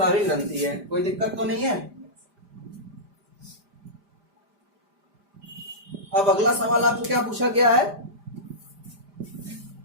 ग्रंथि है। कोई दिक्कत तो नहीं है। अब अगला सवाल आपको क्या पूछा गया है?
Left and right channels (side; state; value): left; late; 5.0 ms